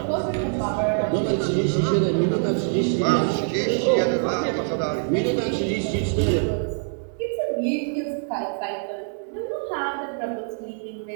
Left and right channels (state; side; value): silent; left; digital silence